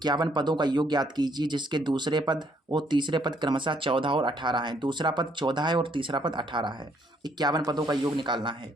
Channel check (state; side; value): normal; both; correlation 0.68